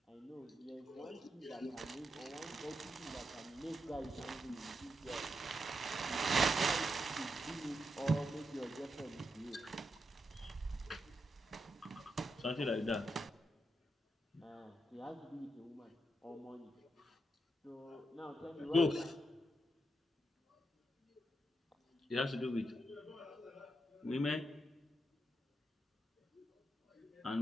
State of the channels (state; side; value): normal; both; correlation 0.84